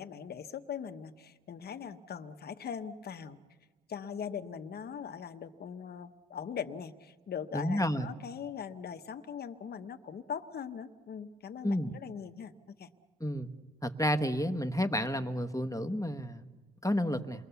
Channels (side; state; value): both; normal; correlation 0.67